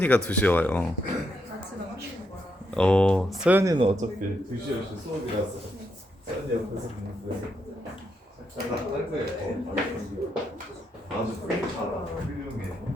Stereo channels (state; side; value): normal; both; correlation 0.80